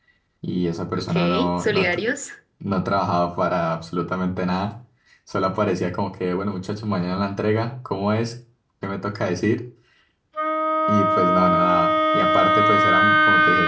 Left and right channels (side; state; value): both; identical; correlation 1.00